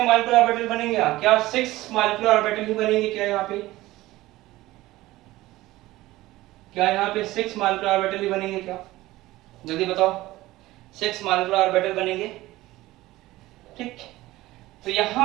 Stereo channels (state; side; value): quieter; left; 17.6 dB